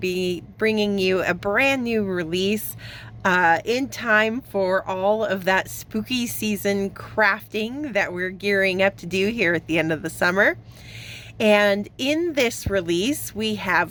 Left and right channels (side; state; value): both; identical; correlation 1.00